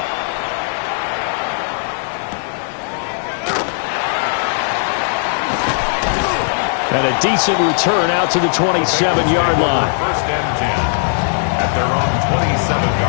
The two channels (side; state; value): right; silent; digital silence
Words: And a decent return out to the 27-yard line. First and 10 at their own